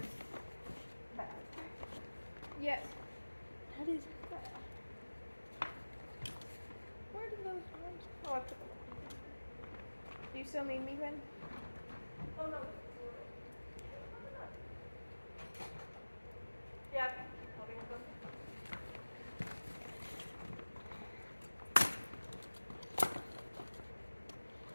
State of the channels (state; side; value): inverted; both; correlation -1.00